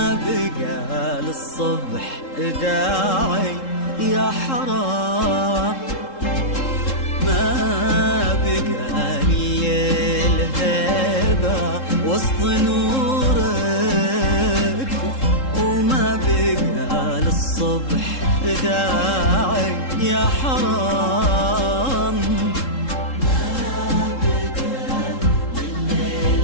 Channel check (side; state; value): right; late; 3.7 ms